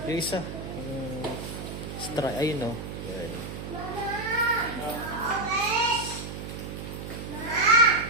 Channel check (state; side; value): noise; right; hum, 8 dB below the sound